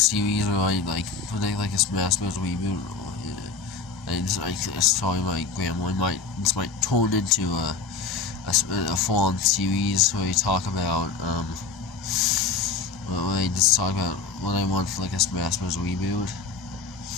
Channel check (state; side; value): quieter; right; 4.7 dB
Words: where I like a Smash Bros. Reboot. I told my grandma this might turn into a full-on series where we talk about where I just talk about what I want for like a Smash Bros. Reboot.